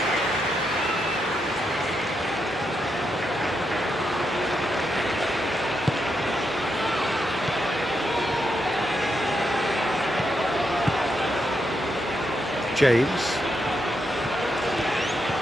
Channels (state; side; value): normal; both; correlation 0.82